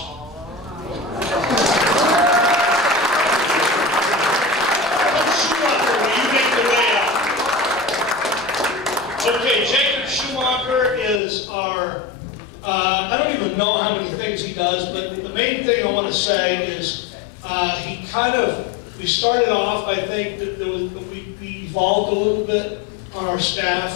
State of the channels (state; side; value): drops out; right; at 11.2 s